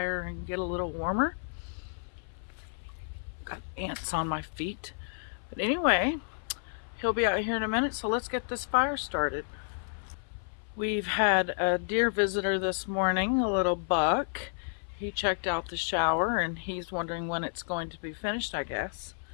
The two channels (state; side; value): silent; right; 57 dB below the other